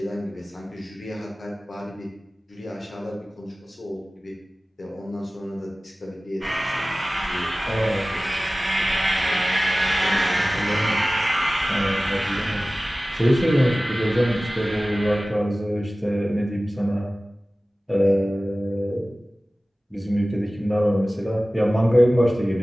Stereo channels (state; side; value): normal; both; correlation 0.97